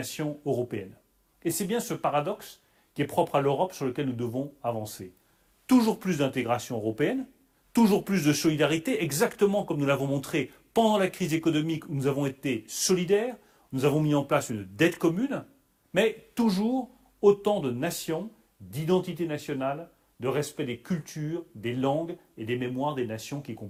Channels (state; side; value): identical; both; correlation 1.00